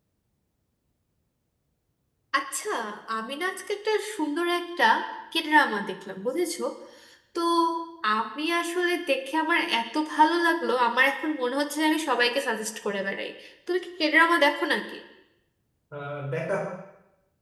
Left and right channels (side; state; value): both; identical; correlation 1.00